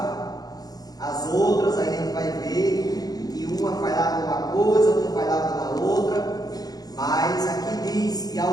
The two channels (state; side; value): late; right; 0.19 ms